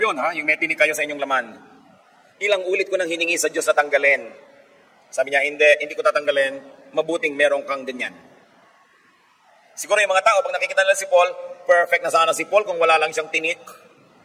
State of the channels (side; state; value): both; identical; correlation 1.00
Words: ha, yung may tinik kayo sa inyong laman. Ilang ulit ko nang hiningi sa Diyos na tanggalin. Sabi niya, hindi ko tatanggalin, mabuting meron kang ganyan. Siguro yung mga tao, pag nakikita nila si Paul, perfect na sana si Paul kung wala lang siyang tinik.